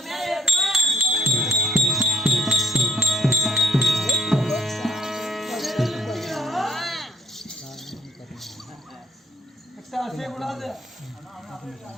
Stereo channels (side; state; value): both; normal; correlation 0.65